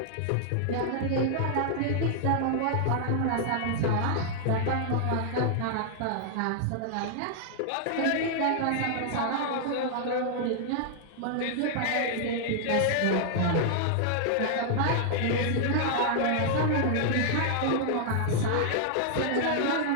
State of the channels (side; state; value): both; different; correlation -0.01